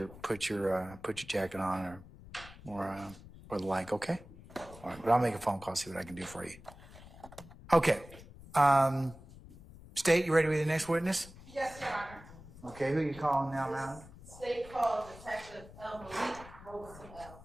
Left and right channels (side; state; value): left; noise; rumble, 18 dB below the sound